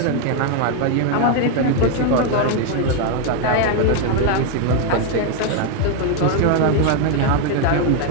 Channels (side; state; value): both; different; correlation 0.01